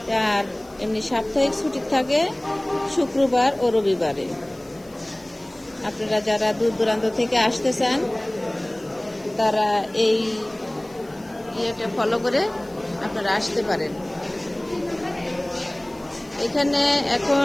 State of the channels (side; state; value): left; noise; hiss, 27 dB below the sound